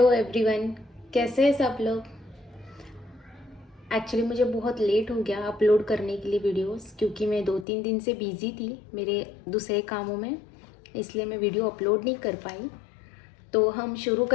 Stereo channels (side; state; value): right; drops out; at 7.7 s